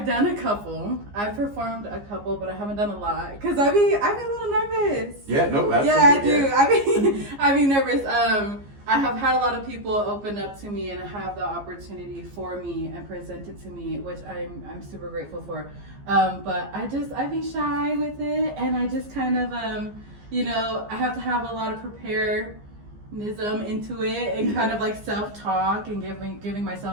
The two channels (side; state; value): left; late; 15 ms